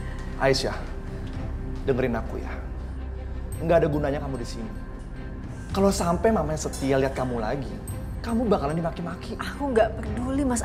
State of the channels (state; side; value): identical; both; correlation 1.00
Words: Aisyah, dengerin aku ya. Nggak ada gunanya kamu di sini. Kalau sampai mamanya Setia lihat kamu lagi, kamu bakalan dimaki-maki. Aku nggak peduli, Mas